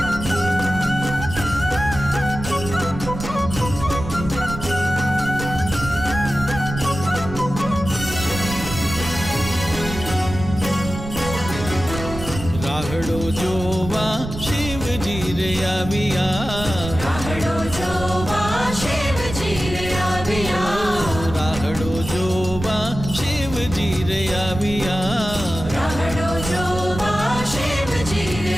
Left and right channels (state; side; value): noise; right; rumble, 9 dB below the sound